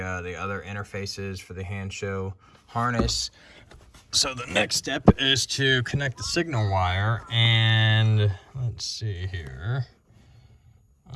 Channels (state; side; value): identical; both; correlation 1.00